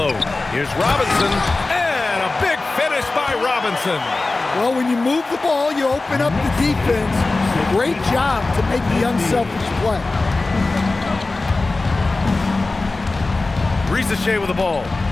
Here's Robinson. And a big finish by Robinson. Well, when you move the ball, you open up the defense. Great job to make the unselfish play. Risache with the ball.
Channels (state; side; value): quieter; right; 3.4 dB